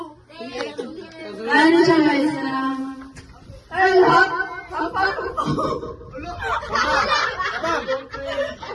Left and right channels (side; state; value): both; identical; correlation 1.00